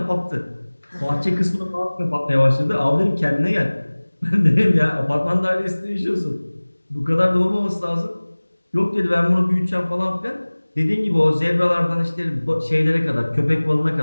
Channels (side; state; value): both; inverted; correlation -1.00